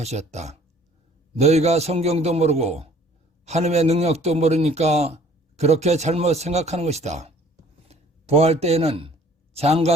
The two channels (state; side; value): normal; both; correlation 0.54